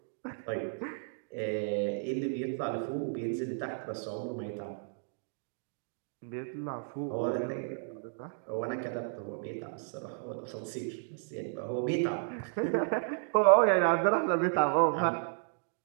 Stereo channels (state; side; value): silent; left; digital silence